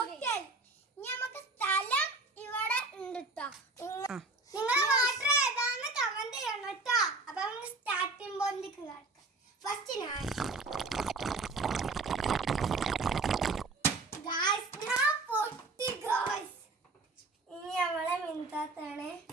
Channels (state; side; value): quieter; left; 3.5 dB